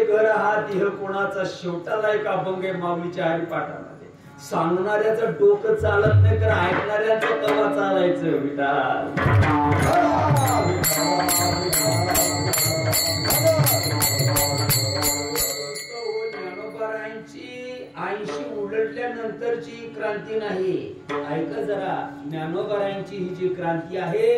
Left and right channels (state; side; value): identical; both; correlation 1.00